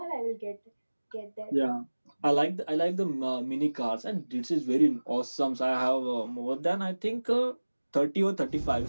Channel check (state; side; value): inverted; both; correlation -1.00